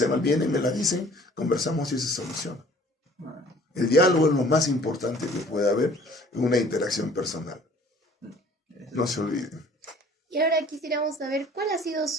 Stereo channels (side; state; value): both; normal; correlation 0.52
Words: mal, vienen, me la dicen, conversamos y se soluciona. El diálogo es lo más importante que puede haber en una interacción personal. No se olviden. Y ahora quisiéramos saber cuál ha sido